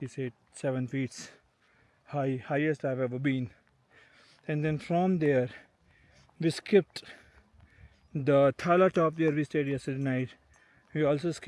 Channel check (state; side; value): identical; both; correlation 1.00